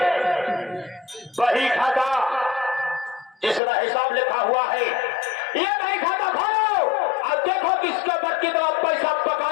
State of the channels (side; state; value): right; drops out; at 3.6 s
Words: बही खाता जिसका हिसाब लिखा हुआ है, ये बही खाता खोलो। अब देखो किसके ऊपर कितना पैसा